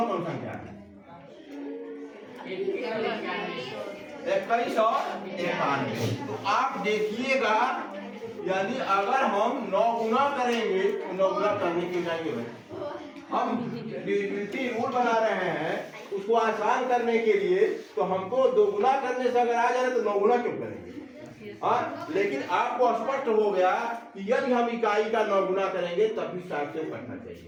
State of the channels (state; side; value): identical; both; correlation 1.00